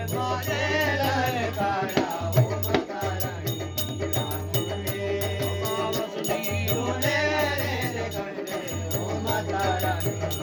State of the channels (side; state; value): both; identical; correlation 1.00